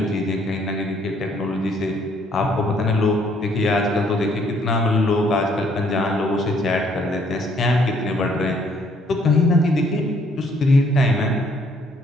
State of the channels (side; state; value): both; normal; correlation 0.65